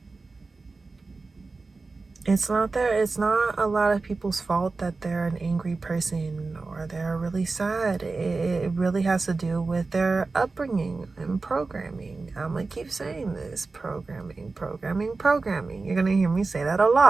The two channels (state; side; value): quieter; left; 3.9 dB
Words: a lot of people's fault that they're an angry person or they're really sad. It really has to do with their upbringing and programming. I'm gonna keep saying this: programming. You're gonna hear me say that a